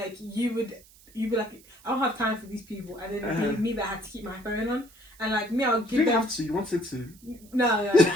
you'd be like, I don't have time for these people. And then it'd be me that had to keep my phone on. And like me, I'll give them... You didn't have to, you wanted to. No.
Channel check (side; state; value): right; noise; hiss, 25 dB below the sound